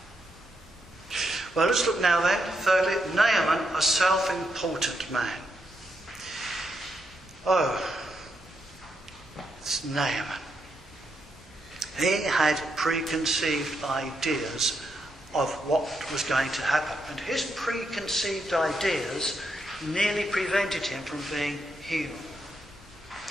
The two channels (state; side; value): normal; both; correlation 0.81